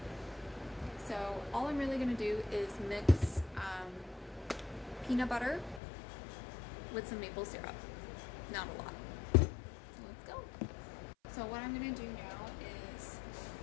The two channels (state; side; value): drops out; right; at 5.8 s